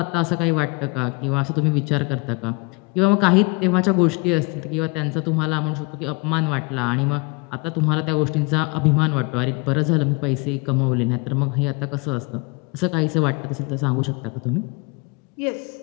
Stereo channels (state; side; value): quieter; right; 29.3 dB